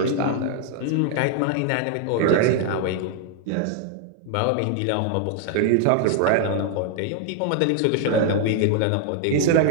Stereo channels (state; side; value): different; both; correlation 0.00